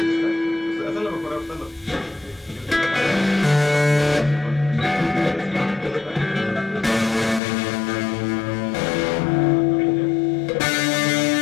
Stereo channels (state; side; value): drops out; right; at 7.4 s